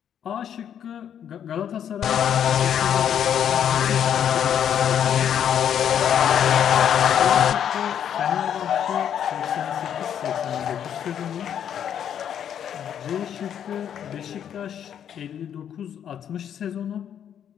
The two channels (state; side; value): quieter; right; 9.2 dB